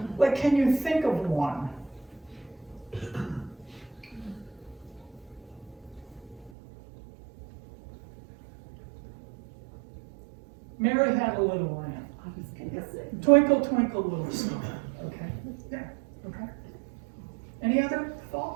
like, can you think of one? Mary Had a Little Lamb. Twinkle, twinkle, little star. Okay, yeah, okay. Any other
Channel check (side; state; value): left; drops out; at 6.5 s